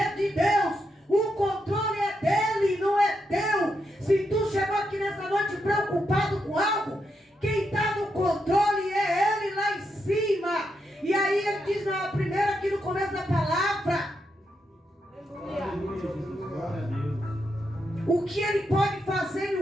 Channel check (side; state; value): both; normal; correlation 0.83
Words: de Deus. O controle é dele, não é teu. Se tu chegou aqui nessa noite preocupado com algo, quem está no controle é ele lá em cima. E aí ele diz na primeira, aqui no começo da palavra, o que ele pode fazer em